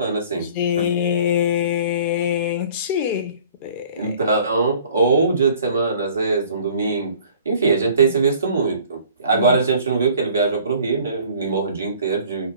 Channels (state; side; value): inverted; both; correlation -0.51